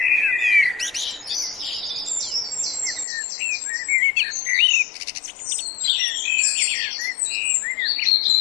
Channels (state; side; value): drops out; right; at 3.1 s